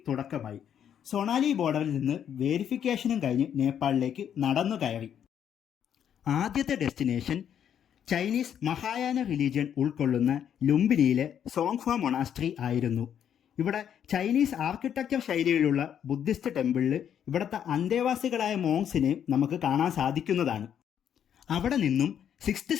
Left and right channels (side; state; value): right; quieter; 9.1 dB